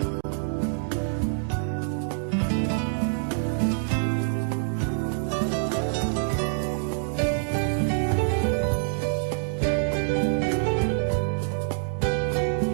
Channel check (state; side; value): silent; left; digital silence